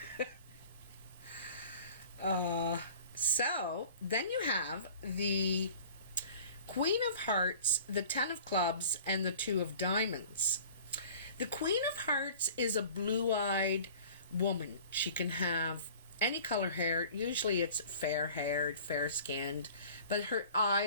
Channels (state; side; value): inverted; both; correlation -0.45